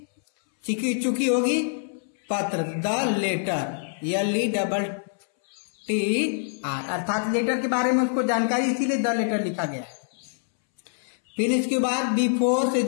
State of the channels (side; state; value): right; silent; 62 dB below the other